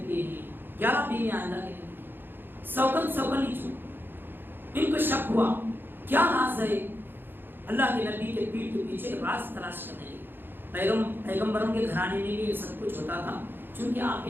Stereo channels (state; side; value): late; left; 0.099 ms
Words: ہیں. 11 بیویاں اللہ کے نبی, سوکن ہی چھو. ان کو شک ہوا کیا راز ہے. اللہ کے نبی کے پیٹھ کے پیچھے راز تلاش کرنے لگے. پیغمبروں کے گھرانے میں بھی یہ سب کچھ ہوتا تھا, چونکہ آپ